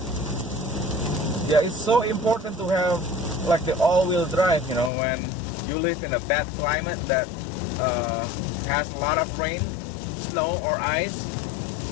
Yeah, it's so important to have like the all-wheel drive, you know, when you live in a bad climate that has a lot of rain, snow or ice.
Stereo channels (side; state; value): right; drops out; at 4.9 s